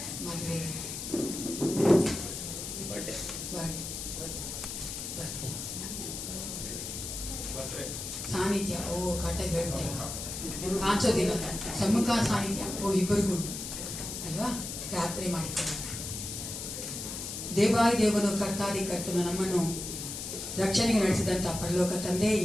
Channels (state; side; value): noise; left; hiss, 6 dB below the sound